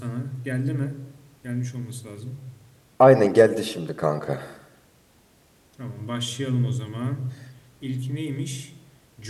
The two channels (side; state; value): both; identical; correlation 1.00